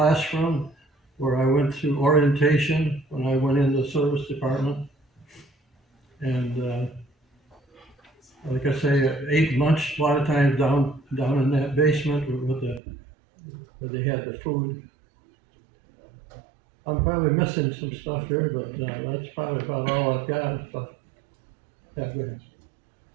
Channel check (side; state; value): left; drops out; at 12.8 s